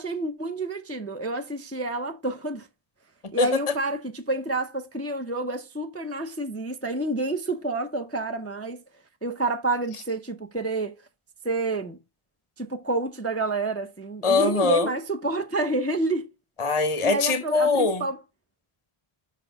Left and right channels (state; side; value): late; right; 1.4 ms